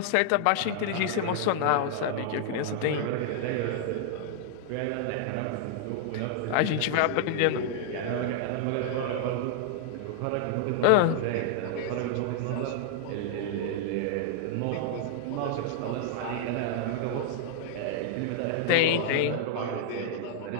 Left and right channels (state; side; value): different; both; correlation -0.01